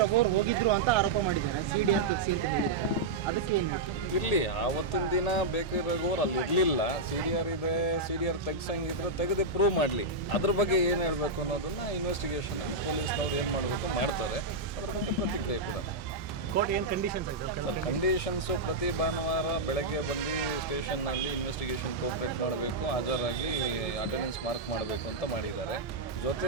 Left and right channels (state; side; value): quieter; left; 3.1 dB